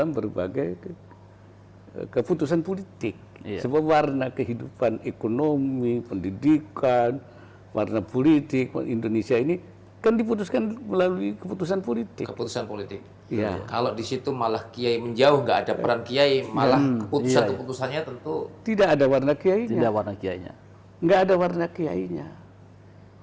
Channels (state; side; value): identical; both; correlation 1.00